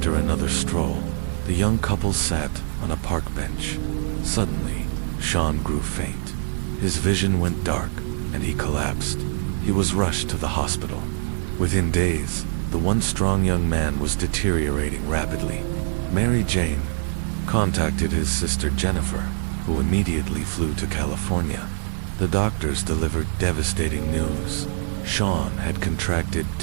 another stroll, the young couple sat on a park bench. Suddenly, Sean grew faint. His vision went dark, and he collapsed. He was rushed to the hospital. Within days, the once strong young man was deteriorating rapidly. Mary Jane contacted his sister Jennifer, who immediately flew to California. The doctors delivered devastating news. Sean had contracted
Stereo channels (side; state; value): left; silent; digital silence